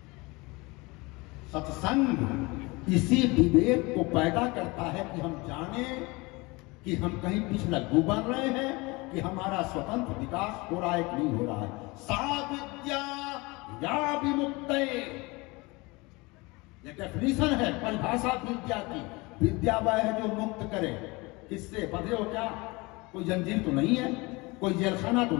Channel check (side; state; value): right; quieter; 24.7 dB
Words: सत्संग इसी विवेक को पैदा करता है कि हम जाने कि हम कहीं पिछलग्गू बन रहे हैं कि हमारा स्वतंत्र विकास हो रहा है कि नहीं हो रहा है। सा विद्या या विमुक्ते, ये डेफिनेशन है, परिभाषा विद्या की। विद्या वह है जो मुक्त करे। किससे? बंधे हो क्या? कोई जंजीर तो नहीं है, कोई जेलखाना तो